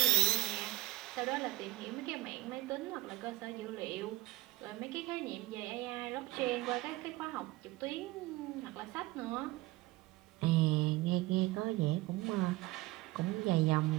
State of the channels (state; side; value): quieter; left; 18.9 dB